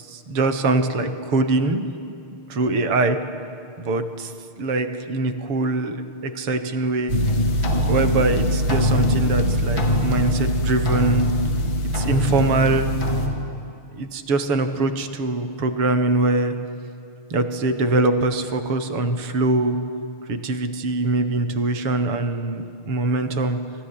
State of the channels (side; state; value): left; late; 6.6 ms